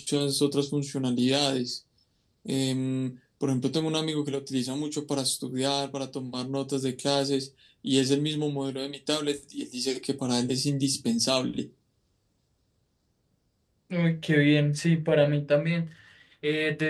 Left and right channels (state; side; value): identical; both; correlation 1.00